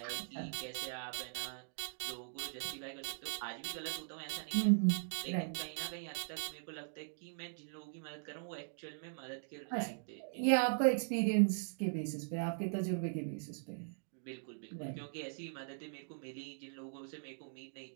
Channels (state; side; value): silent; left; digital silence